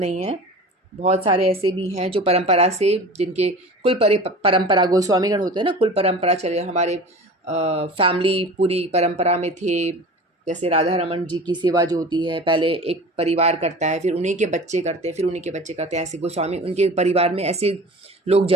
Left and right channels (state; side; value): normal; both; correlation 0.38